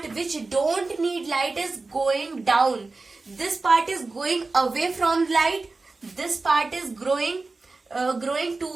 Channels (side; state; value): left; quieter; 3.6 dB